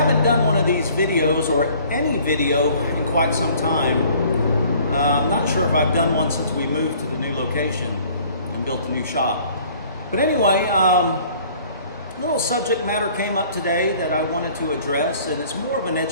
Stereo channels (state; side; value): inverted; both; correlation -0.54